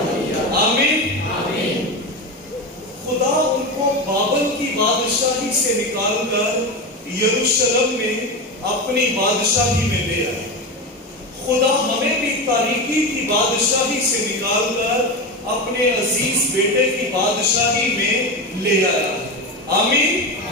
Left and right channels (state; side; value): normal; both; correlation 0.20